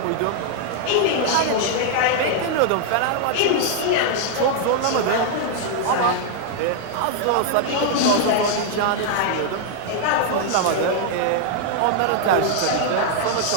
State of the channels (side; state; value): both; different; correlation 0.00